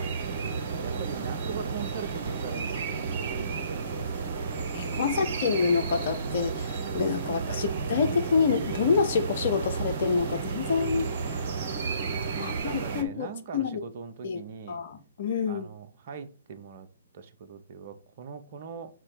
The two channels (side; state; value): both; inverted; correlation -0.62